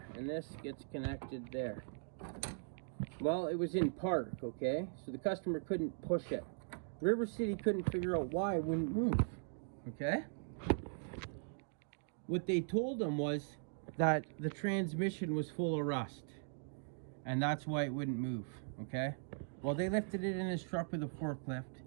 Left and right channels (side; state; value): left; silent; digital silence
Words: and this gets connected there. Well, it was in park, okay? So the customer couldn't push it. River City couldn't figure out why it wouldn't move, okay? What they told them was that the transmission was full of rust, and that's why it wouldn't move, okay? Well, they lifted it in his truck with a forklift.